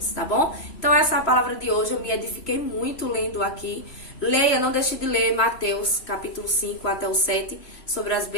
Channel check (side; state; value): right; late; 3.1 ms